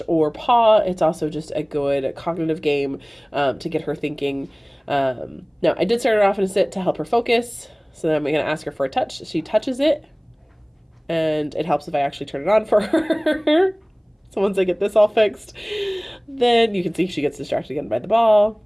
or paw. It's also just a good cognitive game to get her thinking. Now, I did start her off in a sit to help her focus. So then I'm going to ask her for a touch. She touches it, and it helps if I actually turn it on for her. So once I get this all fixed, then you can see she gets distracted again by the ball.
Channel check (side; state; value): both; identical; correlation 1.00